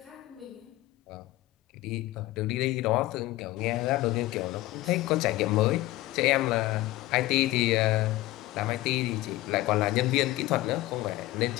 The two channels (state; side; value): quieter; right; 17.5 dB